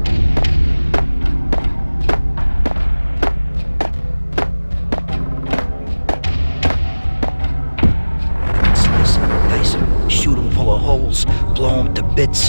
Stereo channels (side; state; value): both; inverted; correlation -1.00